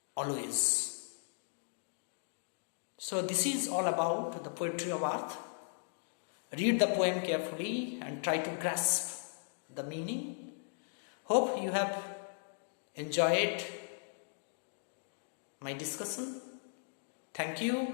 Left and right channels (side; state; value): right; silent; digital silence